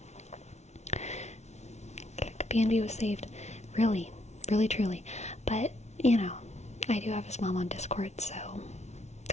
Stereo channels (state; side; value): late; right; 0.32 ms